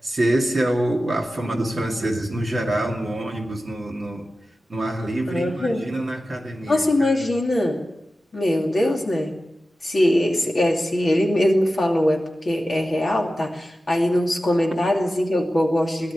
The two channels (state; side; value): normal; both; correlation 0.94